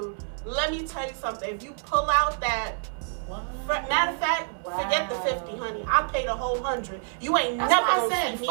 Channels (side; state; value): left; silent; digital silence